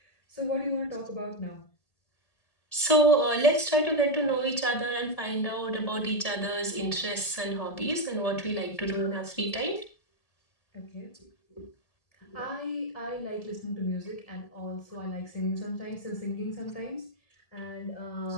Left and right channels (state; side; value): late; right; 1.7 ms